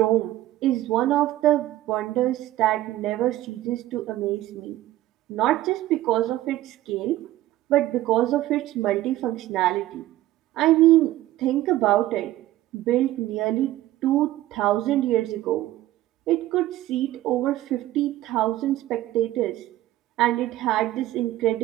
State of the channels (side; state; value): left; quieter; 15.1 dB